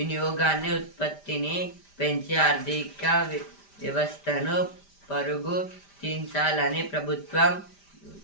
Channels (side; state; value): right; late; 5.0 ms